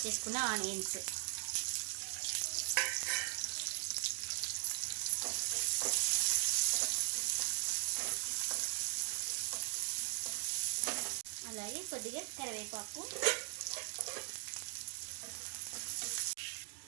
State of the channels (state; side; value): silent; left; digital silence